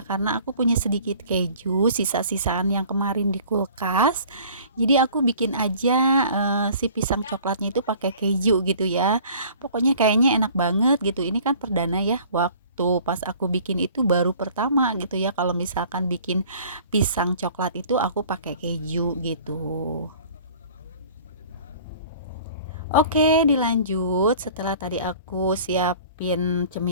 karena aku punya sedikit keju sisa-sisaan yang kemarin di kulkas. Jadi aku bikin aja si pisang coklatnya itu pakai keju gitu ya. Pokoknya kayaknya enak banget gitu. Ini kan perdana ya, waktu pas aku bikin itu baru pertama gitu ya, kalau misalkan bikin pisang coklat itu aku pakai keju gitu. Oke, dilanjut setelah tadi aku siapin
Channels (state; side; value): inverted; both; correlation -0.49